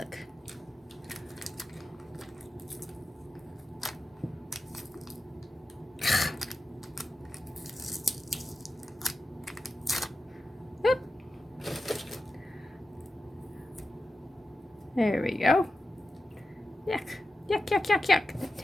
There we go. Yuck, yuck, yuck, yuck, yuck. The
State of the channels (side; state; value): both; normal; correlation 0.92